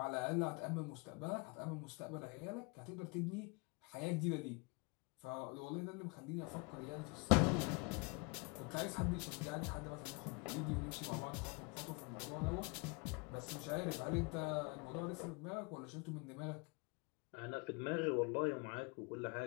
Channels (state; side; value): quieter; right; 29.8 dB